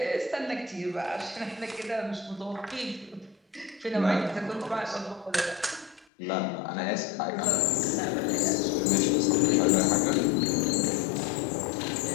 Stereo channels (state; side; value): drops out; right; at 6.1 s